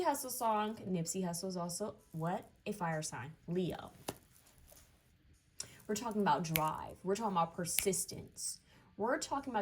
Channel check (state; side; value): identical; both; correlation 1.00